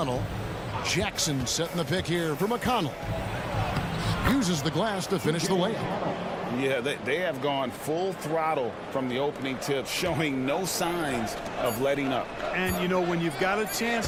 Jackson setting the pick here for McConnell. Uses the glass to finish the layup. Yeah, they have gone full throttle from the opening tip, showing no signs of letting up. And, you know, when you've got a chance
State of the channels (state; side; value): identical; both; correlation 1.00